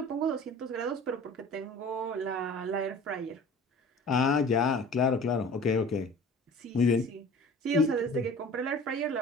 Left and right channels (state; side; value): normal; both; correlation 0.43